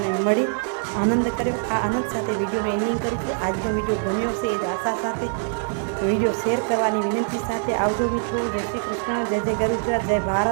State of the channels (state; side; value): silent; left; digital silence